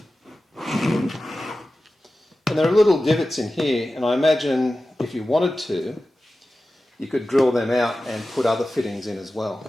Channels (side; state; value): both; normal; correlation 0.95